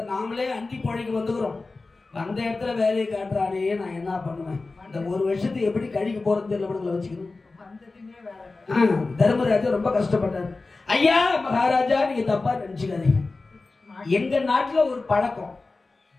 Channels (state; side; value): quieter; right; 3.6 dB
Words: நாமளே அண்டி போழைக்கு வந்துக்கிறோம், அந்த இடத்துல வேலையை காட்டுறானே, நான் என்ன பண்ணுவேன்? இந்த 1 வருஷத்துக்கு எப்படி கழிக்க போறது தெரியல வச்சுக்கணும். தர்மராஜா ரொம்ப கஷ்டப்பட்டாரு. ஐயா மகாராஜா, நீங்க தப்பா நினைச்சுக்காதீங்க. எங்க நாட்டுல ஒரு பழக்கம்,